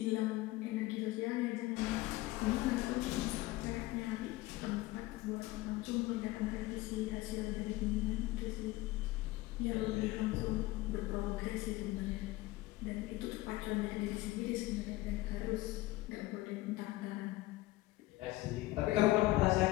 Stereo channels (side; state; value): right; quieter; 18.7 dB